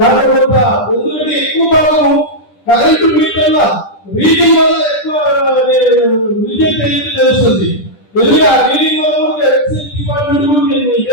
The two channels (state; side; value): late; right; 10 ms